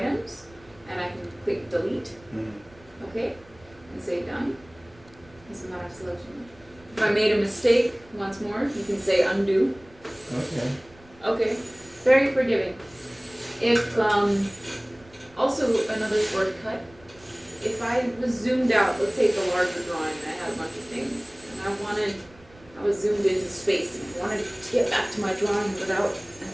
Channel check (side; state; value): right; noise; rumble, 26 dB below the sound